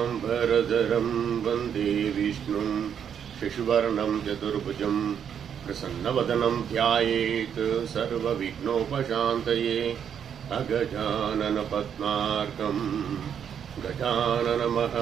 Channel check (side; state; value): left; quieter; 8.3 dB